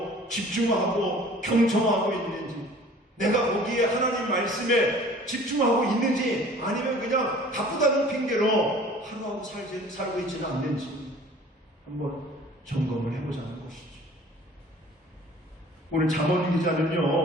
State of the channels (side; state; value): both; normal; correlation 0.49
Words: 집중하고 경청하고 있는지, 내가 거기에 하나님 말씀에 집중하고 있는지 아니면 그냥 바쁘다는 핑계로 하루하루 살고 있지는 않는지 한번 점검을 해보자는 것이죠. 오늘 잠언